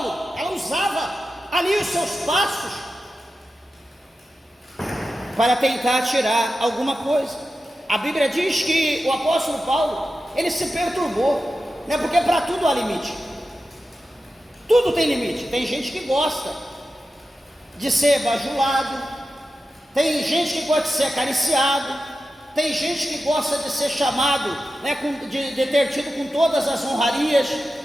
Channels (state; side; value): normal; both; correlation 0.92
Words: ela usava ali os seus passos para tentar tirar alguma coisa. A Bíblia diz que o apóstolo Paulo, ele se perturbou, né? Porque para tudo há limite, tudo tem limite. Tem gente que gosta de ser bajulado, tem gente que gosta de ser acariciado, tem gente que gosta de ser chamado, né, de ter tido com todas as honrarias.